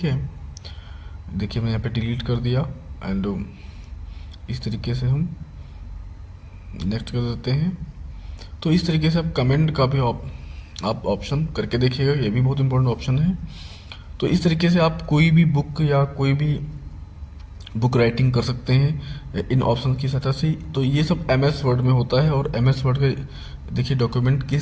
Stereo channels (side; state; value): both; identical; correlation 1.00